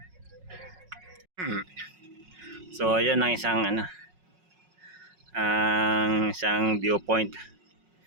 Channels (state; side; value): late; left; 5.4 ms